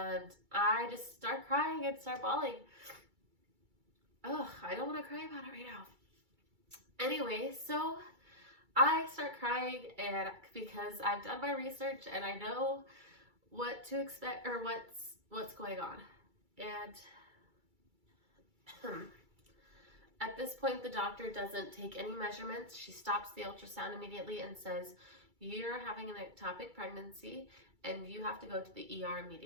I just start crying and start bawling. Oh, I don't want to cry about it right now. Anyway, so I start crying, and because I've done my research and I know what to expect or what's going on. And at this point, the doctor doesn't take any measurements. She stops the ultrasound immediately and says, you're having an ectopic pregnancy and you have to go to the ER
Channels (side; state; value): left; late; 2.3 ms